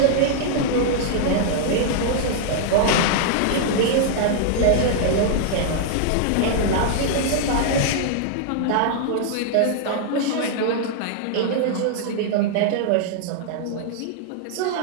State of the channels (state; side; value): different; both; correlation -0.01